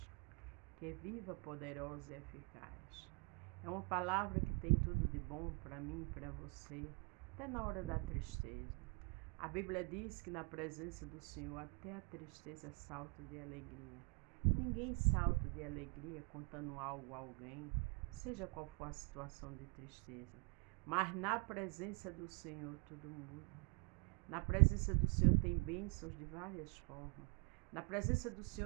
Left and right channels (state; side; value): quieter; left; 32.9 dB